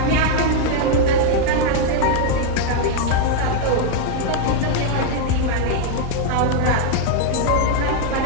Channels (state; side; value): different; both; correlation 0.00